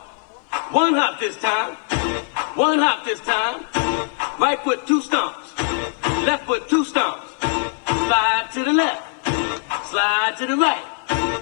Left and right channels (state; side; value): silent; right; 65 dB below the other